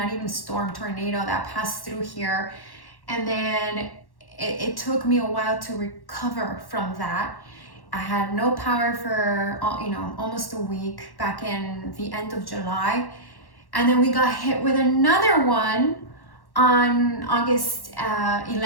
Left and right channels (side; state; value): right; late; 1.1 ms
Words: even storm, tornado that passed through here, and then it took me a while to recover from that. I had no power for almost a week back in the end of July, and then we got hit with another one on August